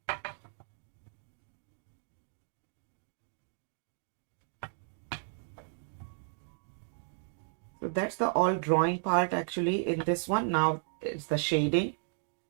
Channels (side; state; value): left; silent; digital silence